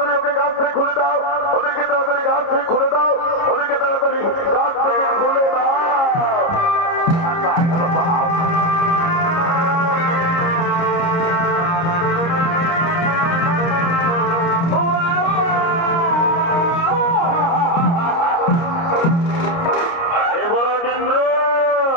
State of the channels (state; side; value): late; right; 30 ms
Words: ওকে গাছ থেকে খুলে দাও, ওদেরকে তাড়াতাড়ি গাছ থেকে খুলে দাও, ওদেরকে তাড়াতাড়ি গাছ থেকে খুলে দাও।